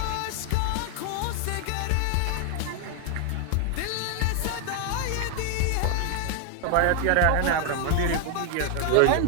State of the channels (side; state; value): both; different; correlation 0.00